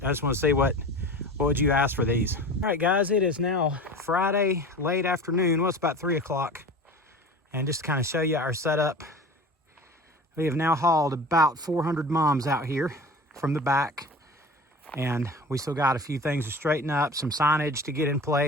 I just want to see what would you ask for these. All right, guys, it is now Friday, late afternoon. Well, it's about 3 o'clock. And just to kind of show you our setup, we have now hauled about 400 mums out here from the back, and we still got a few things to straighten up, some signage to get in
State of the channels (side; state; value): both; normal; correlation 0.36